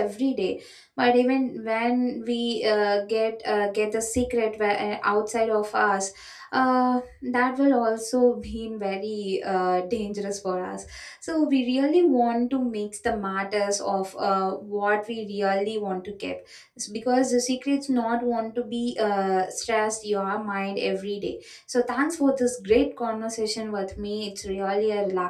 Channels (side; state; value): both; identical; correlation 1.00